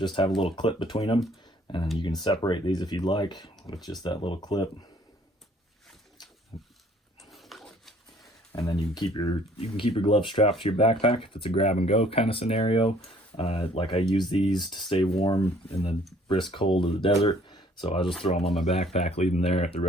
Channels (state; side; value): normal; both; correlation 0.58